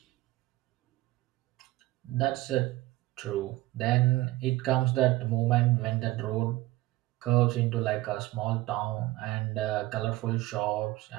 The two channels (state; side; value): quieter; left; 17.9 dB